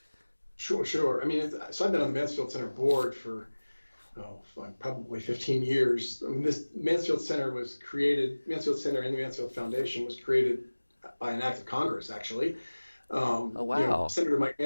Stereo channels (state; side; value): inverted; both; correlation -1.00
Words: Sure. I mean, so I've been on the Mansfield Center board for probably 15 years. I mean, this Mansfield Center was created. Mansfield Center and the Mansfield Foundation was created by an act of Congress, actually. Oh, wow. Senator Mike